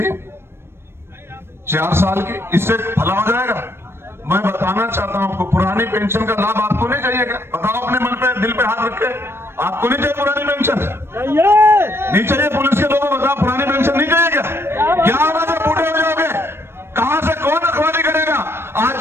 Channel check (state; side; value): late; left; 0.12 ms